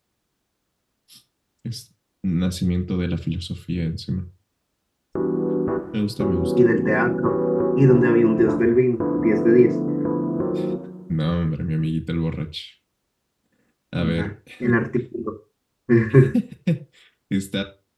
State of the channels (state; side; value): identical; both; correlation 1.00